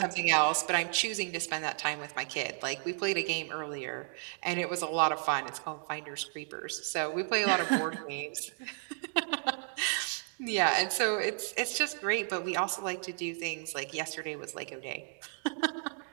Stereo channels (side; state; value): left; silent; 56 dB below the other